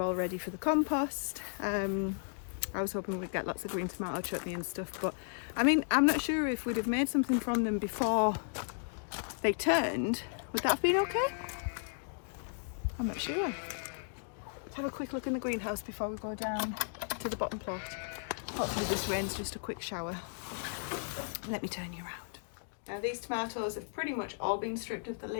ready for the compost. I was hoping we'd get lots of green tomato chutney and stuff, but I mean, I'm not sure if we'd have made something from them before they turned. Would that have been okay? I'm not sure. Let's have a quick look in the greenhouse before we go down to the bottom plot. Hopefully this rain's just a quick shower. Let me turn you around. Now these tomatoes have pretty much all been stripped of the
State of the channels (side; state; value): right; silent; digital silence